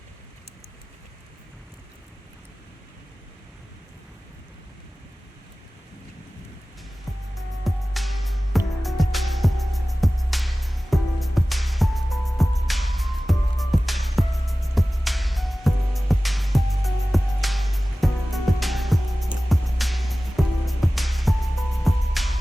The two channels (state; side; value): normal; both; correlation 0.97